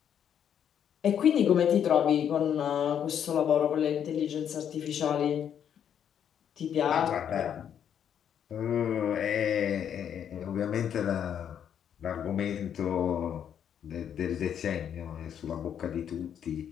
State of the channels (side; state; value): right; quieter; 8.9 dB